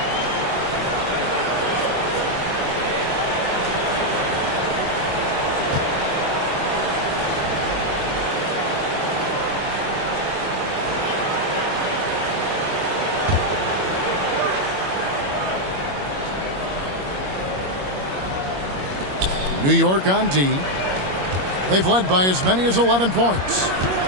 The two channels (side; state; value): left; late; 21 ms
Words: New York on D. They've led by as many as 11 points.